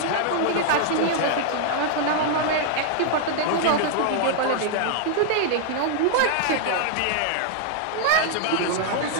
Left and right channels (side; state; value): both; different; correlation -0.01